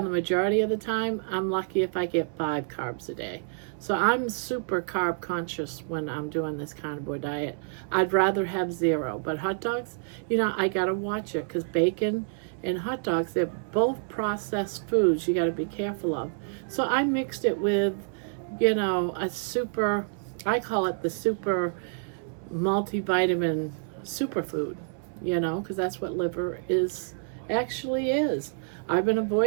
the majority of the time, I'm lucky if I get 5 carbs a day. So I'm super carb conscious when I'm doing this carnivore diet. I'd rather have 0. But hot dogs, I gotta watch it, because bacon and hot dogs, they're both processed foods you gotta be careful of. So I mixed it with, a super, I call it the super multivitamin superfood, because that's what liver actually is. I've been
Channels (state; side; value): silent; left; 59 dB below the other